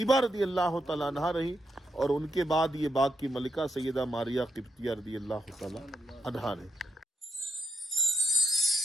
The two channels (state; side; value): normal; both; correlation 0.81